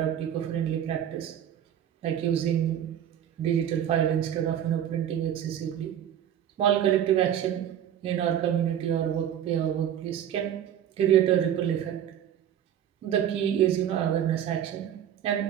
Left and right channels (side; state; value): left; quieter; 10.1 dB